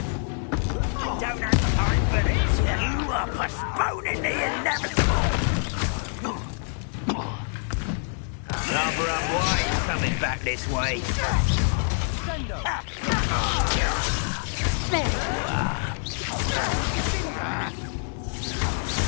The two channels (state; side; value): silent; right; 56 dB below the other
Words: I don't have time for this. You are postponing the inevitable. Rather unwise coming back this way. There you are.